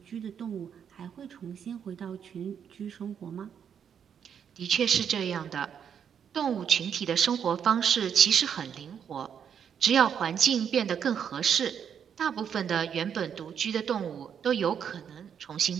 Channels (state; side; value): quieter; left; 8.0 dB